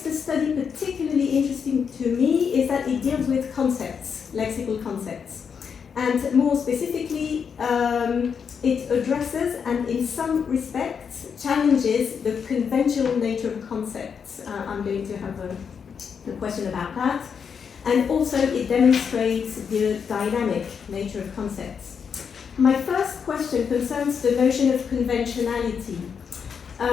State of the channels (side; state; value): right; quieter; 6.7 dB